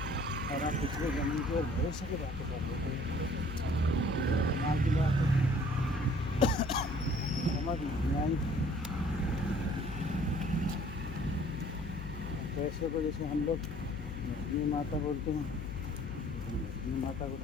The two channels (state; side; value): noise; left; hum, 9 dB below the sound